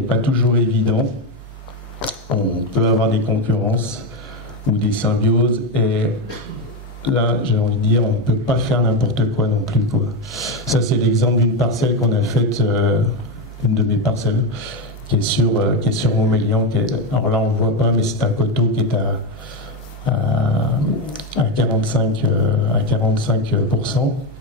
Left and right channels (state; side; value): normal; both; correlation 0.10